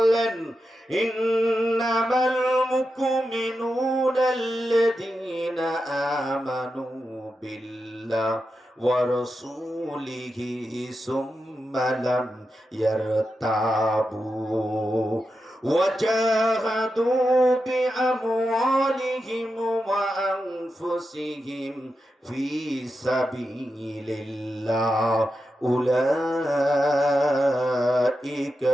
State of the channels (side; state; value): both; normal; correlation 0.89